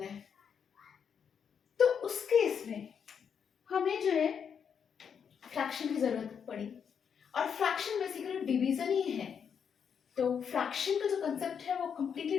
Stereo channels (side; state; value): right; quieter; 7.2 dB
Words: है, तो उस केस में हमें जो है फ्रैक्शन की जरूरत पड़ी। और फ्रैक्शन बेसिकली डिवीजन ही है। तो फ्रैक्शन का जो कंसेप्ट है वो कंप्लीटली